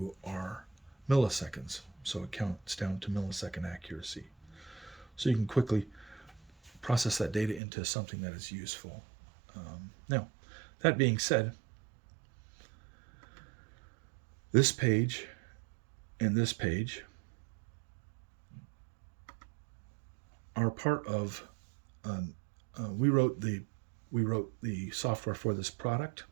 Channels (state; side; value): drops out; left; at 7.6 s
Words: are milliseconds. So it counts down to millisecond accuracy. So you can quickly process that data into something that is useful. Now, that being said, this page and this page are part of we wrote the software for this product,